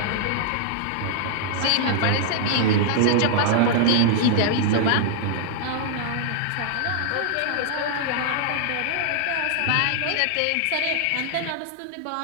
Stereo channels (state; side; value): different; both; correlation -0.01